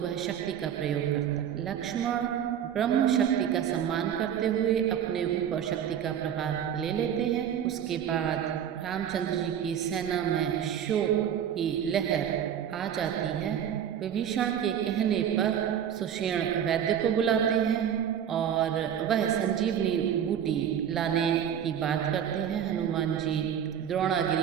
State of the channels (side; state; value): left; quieter; 9.2 dB